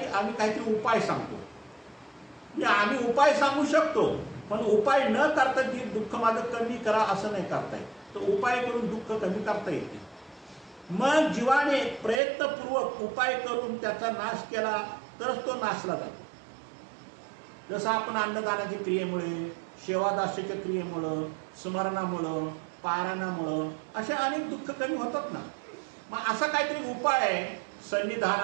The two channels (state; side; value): drops out; left; at 12.2 s